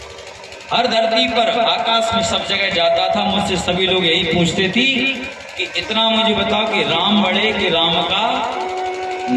हर धरती पर आकाश में सब जगह जाता था, मुझसे सभी लोग यही पूछते थी कि इतना मुझे बताओ कि राम बड़े कि राम का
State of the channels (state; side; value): identical; both; correlation 1.00